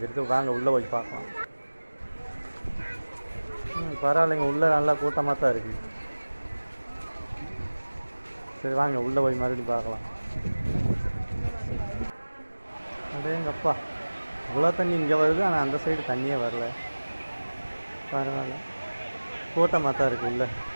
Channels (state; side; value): inverted; both; correlation -1.00